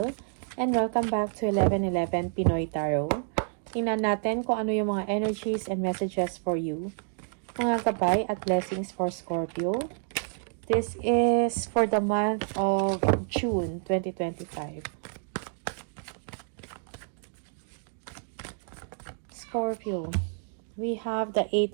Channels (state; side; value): silent; left; digital silence